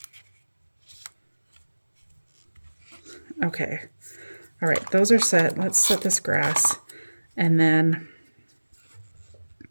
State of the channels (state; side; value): inverted; both; correlation -1.00